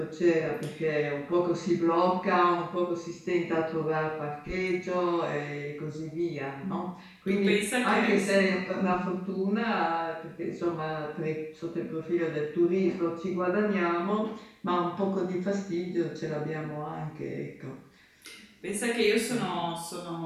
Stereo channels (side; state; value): both; identical; correlation 1.00